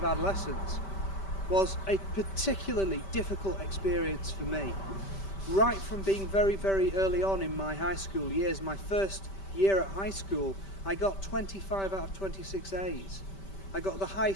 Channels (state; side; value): late; right; 5.1 ms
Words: adolescence, was a particularly difficult experience for me. Right from being very, very early on in my high school years, my first year at high school, I got 25 out of 26 A's. I got the